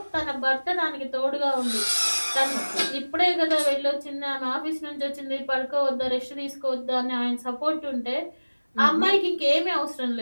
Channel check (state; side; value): inverted; both; correlation -1.00